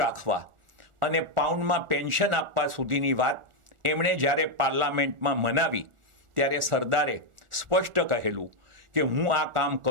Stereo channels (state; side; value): late; left; 1.4 ms